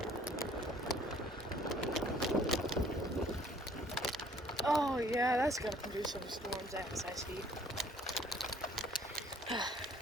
Oh yeah, that's gonna produce some storms as I see.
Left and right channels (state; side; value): normal; both; correlation 0.58